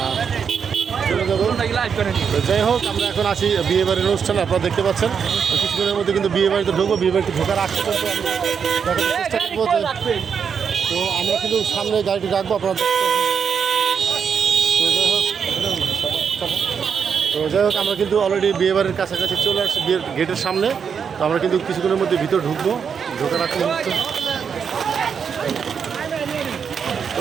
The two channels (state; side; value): quieter; left; 6.8 dB